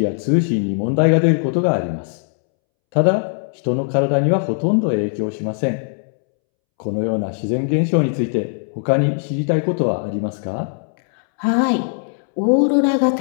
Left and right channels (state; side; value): silent; right; 66 dB below the other